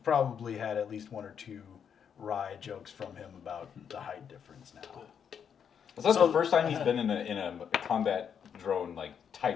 probably had at least 1 or 2 wry jokes from him about the height difference now. So that's the first time he's been in a combat drone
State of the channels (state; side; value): quieter; right; 7.7 dB